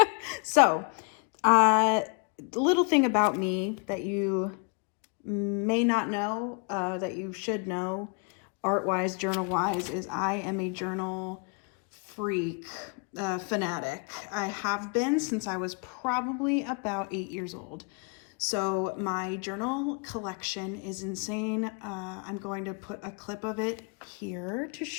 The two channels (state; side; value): quieter; right; 35.3 dB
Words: So, little thing about me that you may not know, that you should know, art-wise, journal-wise, is I am a journal freak, fanatic. I have been since I was probably about 8 years old. So my journal collection is insane. I'm going to put a clip of it here to